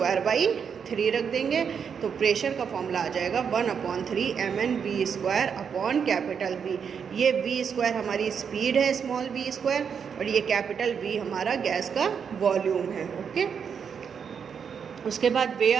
रख देंगे, तो प्रेशर का फॉर्मूला आ जाएगा 1/3 mnV²/V। ये V² हमारी स्पीड है, स्मॉल v², और ये कैपिटल V हमारा गैस का वॉल्यूम है, ओके। उसके बाद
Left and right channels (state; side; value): quieter; left; 6.9 dB